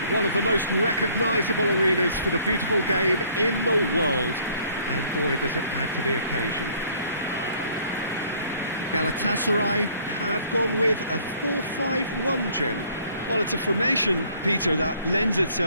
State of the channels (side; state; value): both; inverted; correlation -0.59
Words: one of the most recognisable arenas for the beautiful game in the world, and boy does it add to the occasion. Galatasaray have gone with a 4-5-1, Jim. Well, it's a formation, Peter, that lends